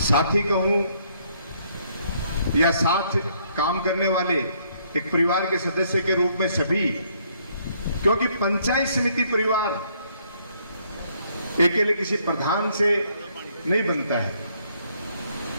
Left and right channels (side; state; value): both; inverted; correlation -0.68